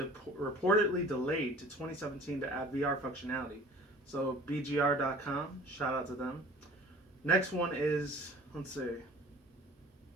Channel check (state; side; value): normal; both; correlation 0.45